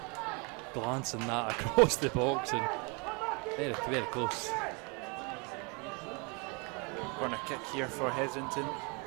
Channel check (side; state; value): left; quieter; 31.8 dB